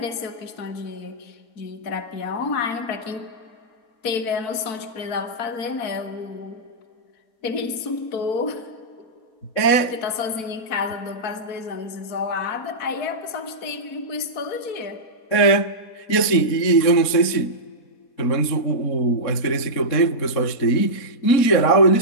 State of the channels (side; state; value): right; late; 3.7 ms